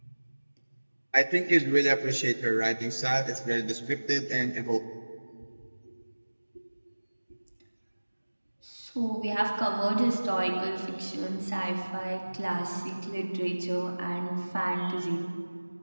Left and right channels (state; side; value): inverted; both; correlation -1.00